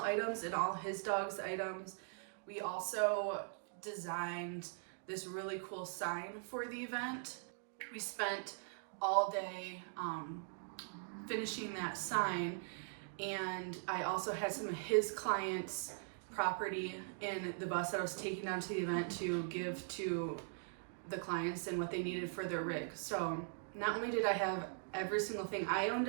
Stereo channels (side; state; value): left; silent; digital silence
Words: items and all his dog's items. We also designed this really cool sign for the event. We spent all day finishing that sign, and I also had some of his clients' property in the bus that I was taking down to the event to give to the clients and what they needed for their rig. So not only did I have every single thing I owned